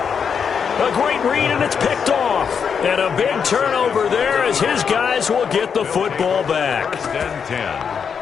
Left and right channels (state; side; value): quieter; right; 6.7 dB